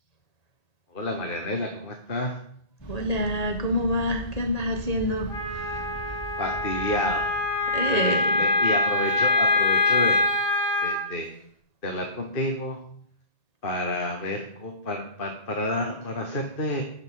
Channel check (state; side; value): late; right; 1.8 ms